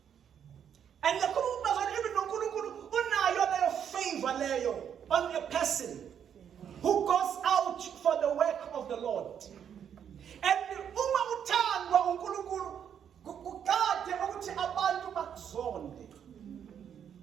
And the even uNkulunkulu unayo leyo favor leyo on a person who goes out for the work of the Lord. And uma uthandwa uNkulunkulu kukade ukuthi abantu bakuzonde.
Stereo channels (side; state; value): left; quieter; 8.5 dB